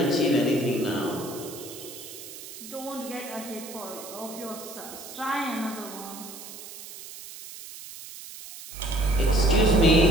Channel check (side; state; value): right; noise; hiss, 13 dB below the sound